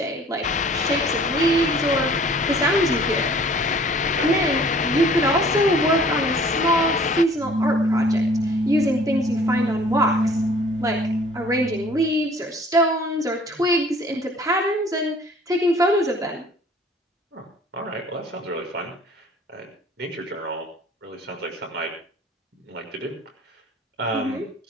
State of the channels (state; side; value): normal; both; correlation 0.52